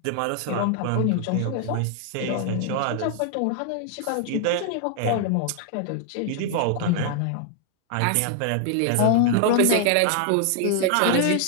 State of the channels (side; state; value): both; different; correlation 0.00